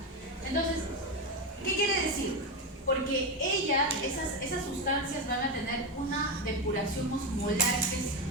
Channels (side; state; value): both; normal; correlation 0.12